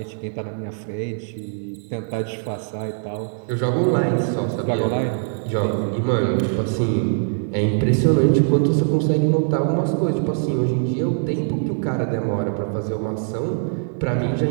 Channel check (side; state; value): left; silent; 61 dB below the other